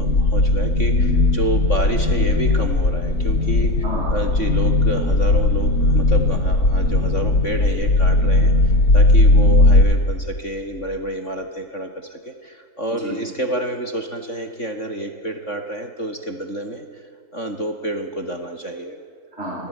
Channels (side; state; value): right; late; 3.5 ms